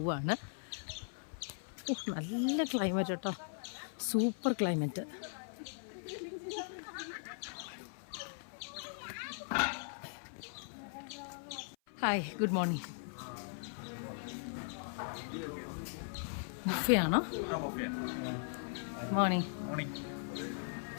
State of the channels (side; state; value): right; silent; 52 dB below the other